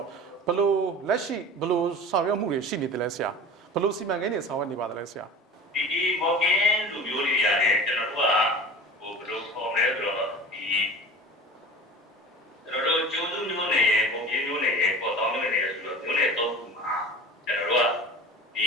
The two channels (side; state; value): both; normal; correlation 0.36